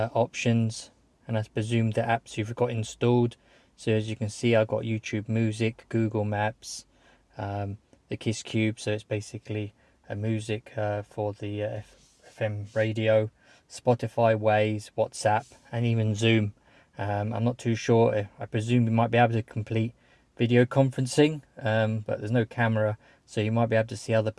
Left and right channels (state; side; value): identical; both; correlation 1.00